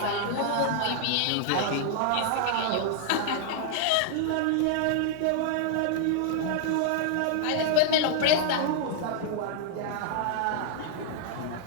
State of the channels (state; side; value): different; both; correlation -0.01